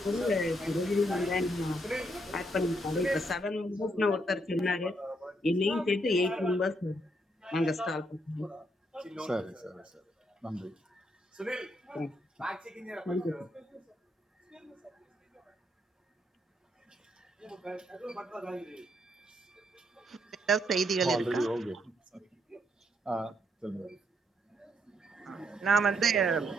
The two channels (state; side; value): normal; both; correlation 0.75